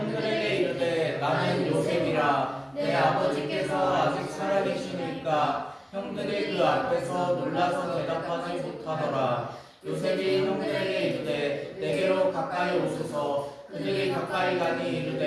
이르되 나는 요셉이라 내 아버지께서 아직 살아계시니까 형들이 그 앞에서 놀라서 대답하지 못하더라. 요셉이 형들에게 이르되 내게로 가까이 오소서. 그들이 가까이 가니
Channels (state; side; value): identical; both; correlation 1.00